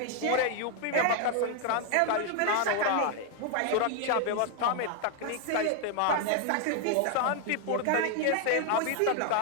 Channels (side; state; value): both; different; correlation 0.00